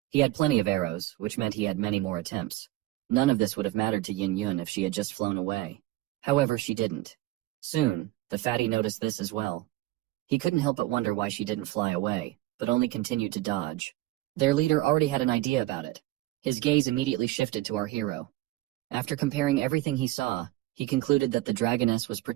He had plenty of arrows, which meant he had many more attempts. None of this would have mattered to Yin Yun if she had just flown away. However, she didn't. Soon, the fatty noticed this as well. He couldn't help but wonder why she didn't fly away, but only continued to dodge. Their leader already had an idea about it. His gaze immediately shifted to our hero. After comparing everything he saw, he concluded that the dragoness was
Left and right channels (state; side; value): quieter; left; 17.3 dB